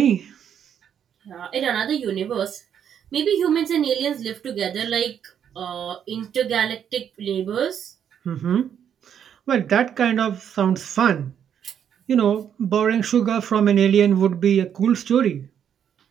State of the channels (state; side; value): quieter; left; 8.7 dB